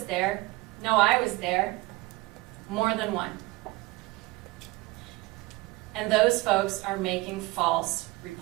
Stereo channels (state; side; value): quieter; left; 21.4 dB